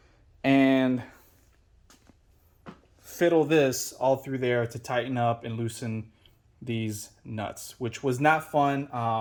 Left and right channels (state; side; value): identical; both; correlation 1.00